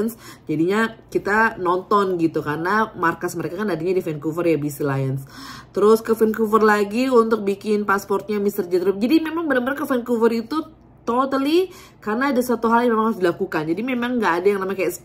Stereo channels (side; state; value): both; identical; correlation 1.00